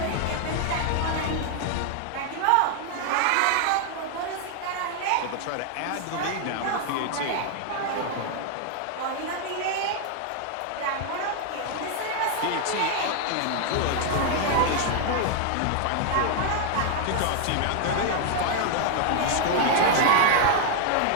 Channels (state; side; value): different; both; correlation 0.00